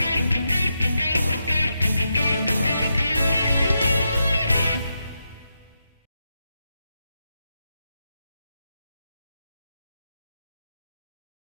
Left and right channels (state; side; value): inverted; both; correlation -0.85